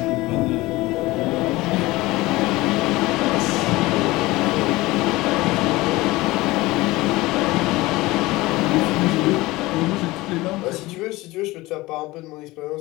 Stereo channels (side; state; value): right; quieter; 19.9 dB